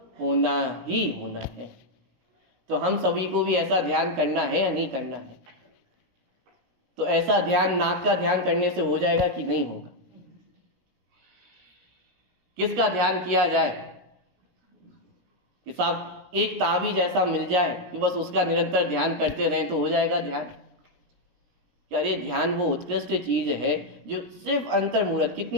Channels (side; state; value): left; late; 17 ms